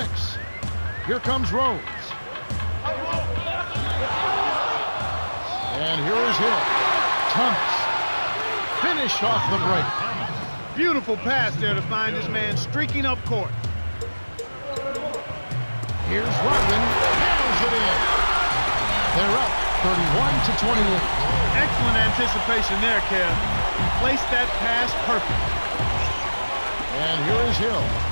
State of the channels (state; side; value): inverted; both; correlation -1.00